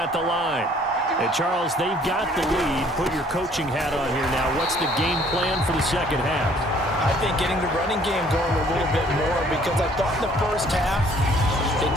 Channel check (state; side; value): normal; both; correlation 0.59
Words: the line. And Charles, they've got the lead. Put your coaching hat on here now. What's the game plan for the 2nd half? I think getting the running game going a little bit more, because I thought in the 1st half they